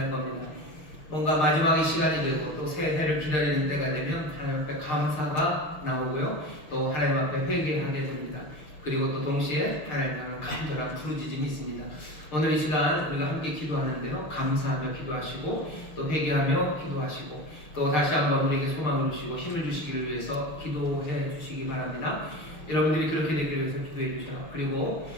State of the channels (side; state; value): right; late; 6.6 ms